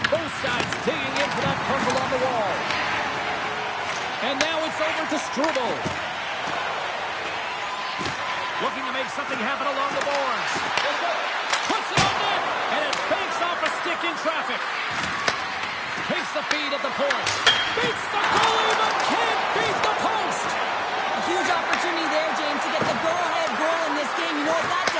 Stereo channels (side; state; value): both; identical; correlation 1.00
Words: Both sides digging into that puzzle on the wall. And now it's over to Struble. Looking to make something happen along the boards. Puts it on net, and it banks off a stick in traffic. Takes the feed at the point. Beats the goalie, but can't beat the post. A huge opportunity there, James, to get the go-ahead goal in this game. You know what that